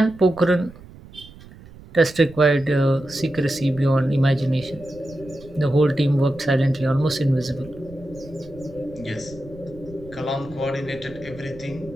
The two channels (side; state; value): right; noise; rumble, 19 dB below the sound